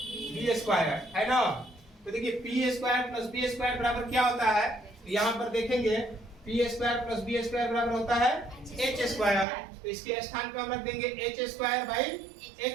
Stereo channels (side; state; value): left; drops out; at 9.5 s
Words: B square, है ना। तो देखिए P square plus B square बराबर क्या होता है, तो यहाँ पर देखेंगे P square plus B square बराबर होता है एच स्क्वायर। तो इसके स्थान पे हम रख देंगे H square by